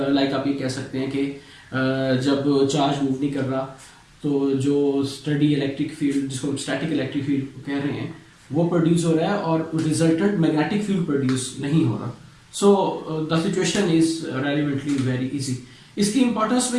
आप ये कह सकते हैं कि जब चार्ज मूव नहीं कर रहा तो जो स्टडी इलेक्ट्रिक फील्ड, जिसको हम स्टैटिक इलेक्ट्रिक फील्ड कह रहे हैं, वो प्रोड्यूस हो रहा है और रिजल्टेंट मैग्नेटिक फील्ड प्रोड्यूस नहीं हो रहा। So the situation is relevantly very easy. इसकी इंपॉर्टेंस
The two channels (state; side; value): identical; both; correlation 1.00